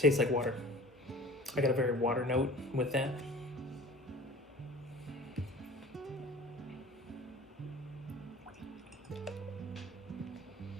like water. I got a very water note with that.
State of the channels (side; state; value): both; normal; correlation 0.43